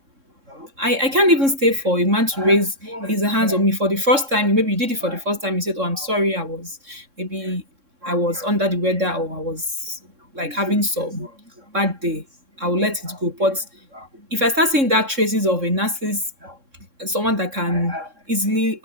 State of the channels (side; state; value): left; late; 3.6 ms